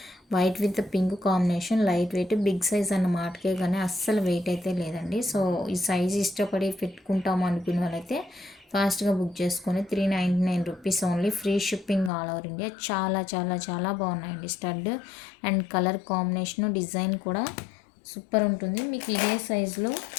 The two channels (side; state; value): right; drops out; at 12.1 s